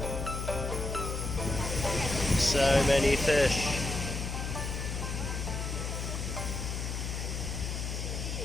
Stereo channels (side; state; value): left; noise; hum, 3 dB below the sound